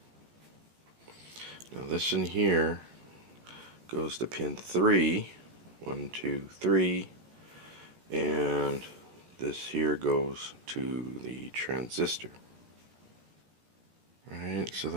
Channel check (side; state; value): left; late; 17 ms